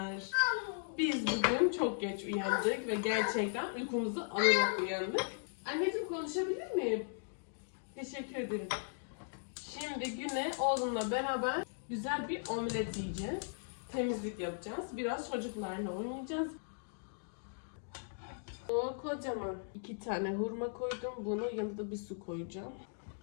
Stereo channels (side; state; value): right; silent; digital silence